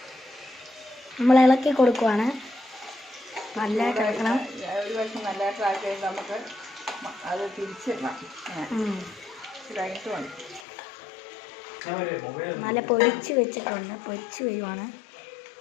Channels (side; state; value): right; drops out; at 10.7 s